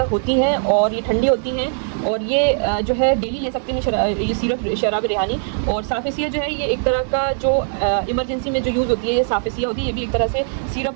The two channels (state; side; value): silent; left; digital silence